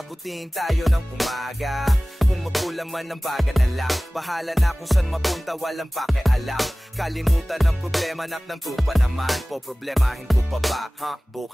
tayo ng umaga. Kung magkulang man ng baga na lang, bahala na kung saan mapunta, walang pakialam. Kalimutan ng problema, naknanto pa naman. Po problemahin ko pa ba,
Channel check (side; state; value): both; normal; correlation 0.98